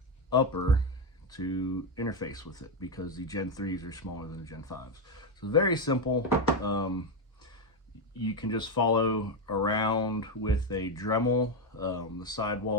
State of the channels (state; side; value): normal; both; correlation 0.08